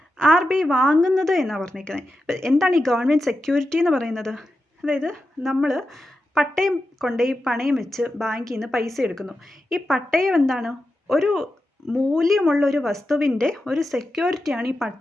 RBI വാങ്ങുന്നത് എന്നാണ് പറഞ്ഞിരിക്കുന്നത്. എന്താണ് ഈ ഗവൺമെൻറ് സെക്യൂരിറ്റി എന്ന് പറയുന്നത്? അതായത് നമ്മൾ പട്ടയം കൊണ്ടുപോയി പണയം വെച്ച് ബാങ്കിൽ നിന്ന് പൈസ എടുക്കുന്നു. ഈ പട്ടയം എന്താണ്? ഒരു മൂല്യമുള്ള ഒരു വസ്തുവിൻ്റെ ഒരു സെക്യൂരിറ്റിയാണ് ഈ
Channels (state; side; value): normal; both; correlation 0.90